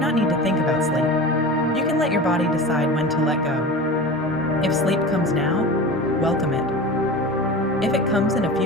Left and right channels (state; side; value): normal; both; correlation 0.32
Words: need to think about sleep. You can let your body decide when to let go. If sleep comes now, welcome it. If it comes in a